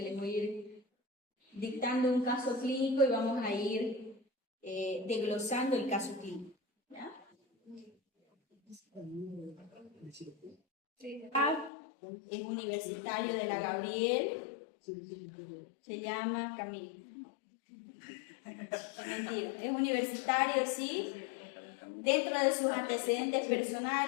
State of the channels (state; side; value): drops out; right; at 11.7 s